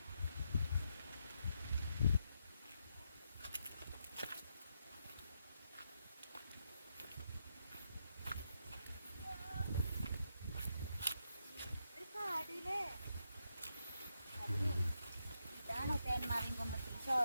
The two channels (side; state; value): both; inverted; correlation -0.82